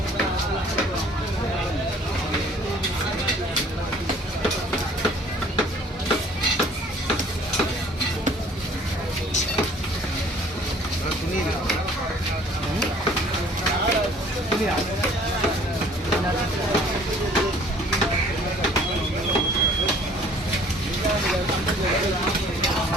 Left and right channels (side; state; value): both; normal; correlation 0.54